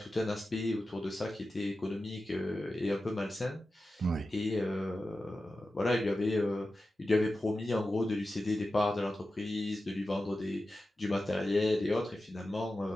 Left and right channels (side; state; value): both; normal; correlation 0.93